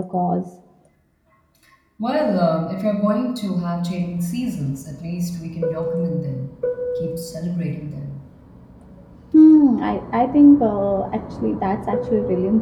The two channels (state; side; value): identical; both; correlation 1.00